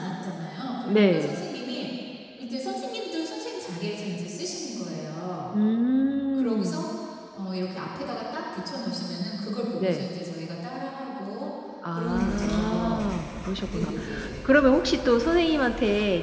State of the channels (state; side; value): identical; both; correlation 1.00